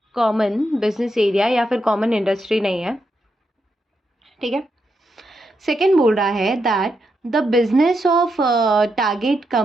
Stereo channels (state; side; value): normal; both; correlation 0.83